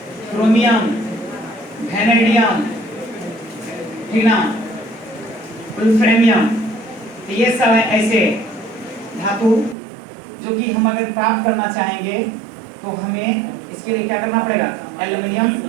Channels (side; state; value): left; drops out; at 9.8 s